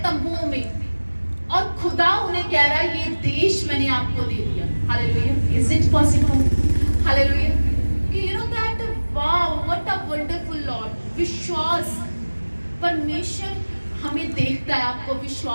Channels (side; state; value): both; inverted; correlation -1.00